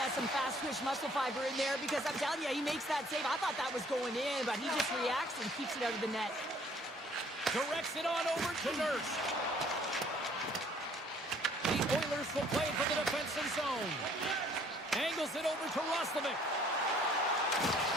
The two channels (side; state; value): both; normal; correlation 0.59